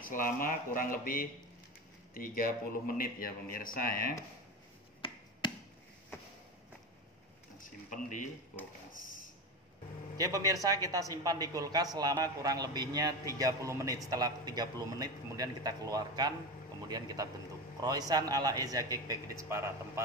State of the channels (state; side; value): normal; both; correlation 0.22